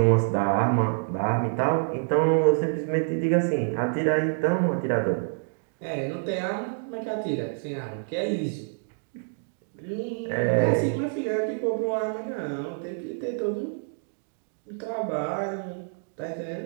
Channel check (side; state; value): left; silent; digital silence